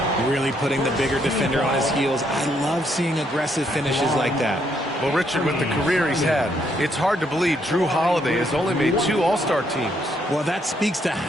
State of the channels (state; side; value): normal; both; correlation 0.73